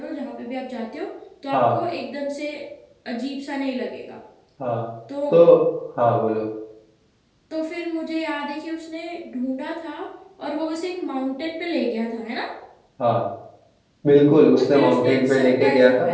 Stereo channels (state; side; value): identical; both; correlation 1.00